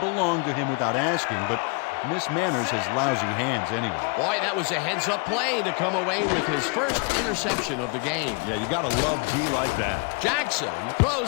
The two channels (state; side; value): quieter; right; 33.2 dB